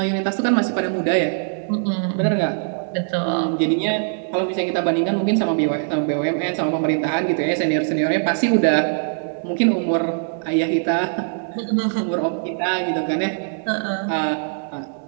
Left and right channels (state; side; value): silent; left; digital silence